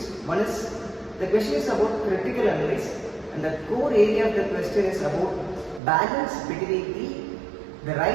One is the question is about critical analysis, and the core area of the question is about balance between the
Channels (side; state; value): left; drops out; at 5.8 s